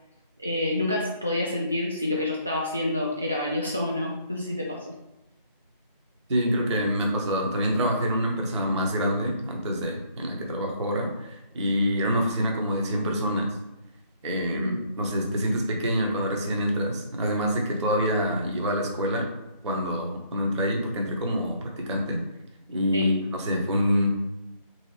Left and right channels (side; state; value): both; inverted; correlation -0.64